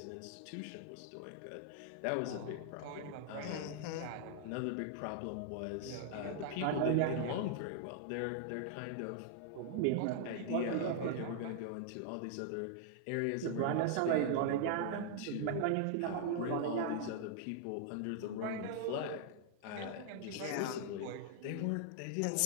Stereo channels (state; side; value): different; both; correlation -0.01